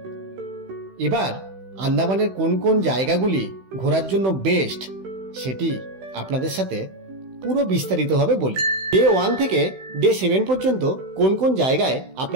এবার আন্দামানের কোন কোন জায়গাগুলি ঘোরার জন্য বেস্ট সেটি আপনাদের সাথে পুরো বিস্তারিতভাবে বলি। ডে 1 থেকে ডে 7 পর্যন্ত কোন কোন জায়গায়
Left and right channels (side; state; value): left; late; 16 ms